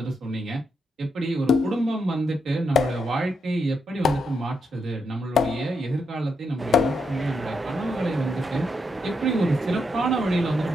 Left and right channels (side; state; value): both; normal; correlation 0.81